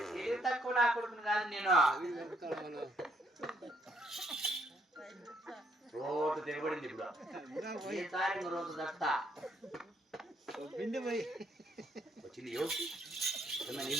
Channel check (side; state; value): both; normal; correlation 0.70